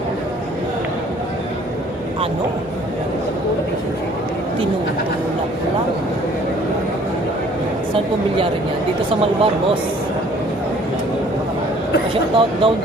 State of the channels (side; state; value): both; normal; correlation 0.56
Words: Ano? Tinutulak lang. Saan po bilyarin yan? Dito sa Malbar, boss. Shoutout daw,